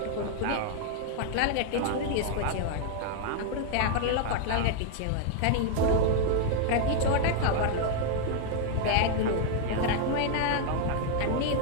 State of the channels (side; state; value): both; different; correlation 0.00